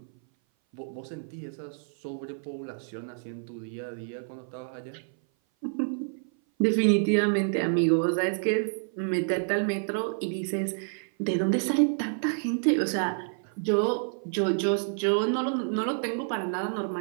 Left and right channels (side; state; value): left; silent; 57 dB below the other